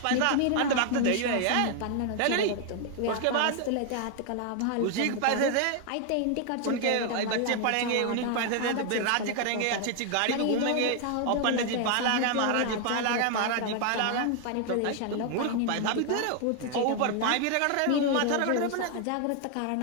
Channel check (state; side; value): different; both; correlation 0.00